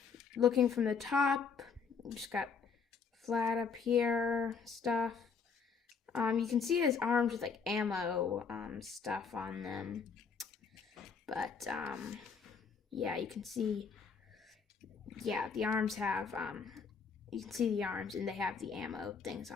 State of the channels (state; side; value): quieter; right; 5.7 dB